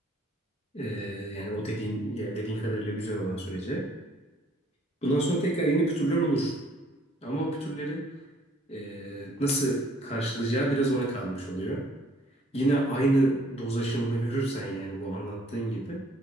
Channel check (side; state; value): both; normal; correlation 0.61